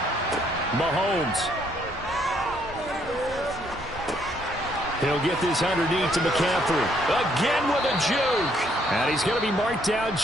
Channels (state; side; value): normal; both; correlation 0.69